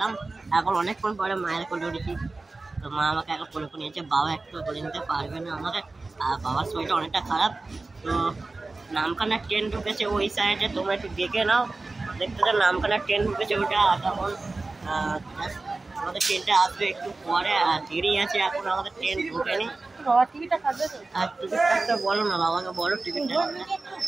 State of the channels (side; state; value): left; quieter; 3.4 dB